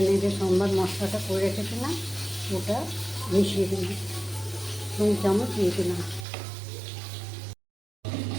যে সম্বার মশলাটা করে রেখেছিলাম ওটা মিশিয়ে দিলাম, 2 চামচ দিয়ে দিলাম।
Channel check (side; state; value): left; drops out; at 6.2 s